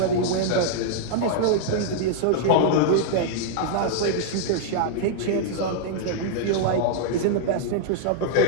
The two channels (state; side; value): different; both; correlation -0.01